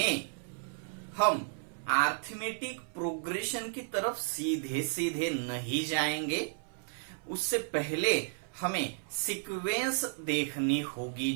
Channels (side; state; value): left; silent; 56 dB below the other